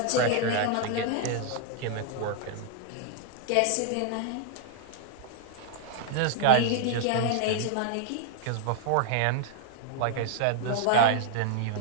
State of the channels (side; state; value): both; different; correlation -0.01